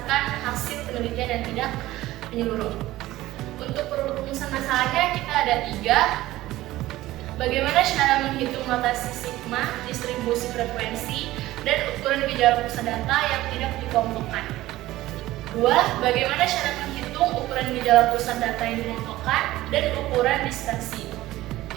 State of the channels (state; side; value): quieter; left; 16.5 dB